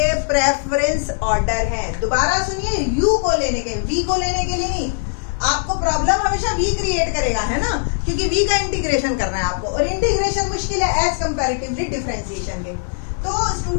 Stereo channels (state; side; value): silent; right; 61 dB below the other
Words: प्रेफरेंस ऑर्डर हैं। दोबारा सुनिए, u को लेने के, v को लेने के लिए नहीं। आपको प्रॉब्लम हमेशा v क्रिएट करेगा, है ना, क्योंकि v का इंटीग्रेशन करना है आपको, और इंटीग्रेशन मुश्किल है एज कंपैरेटिवली डिफरेंशिएशन के। तो